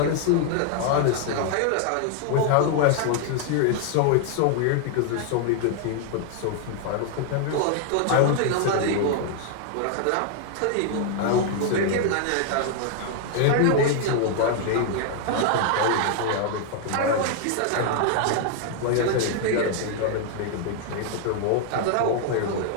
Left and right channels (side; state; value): both; different; correlation 0.00